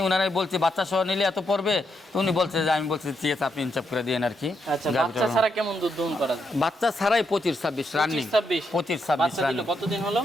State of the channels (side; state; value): both; normal; correlation 0.80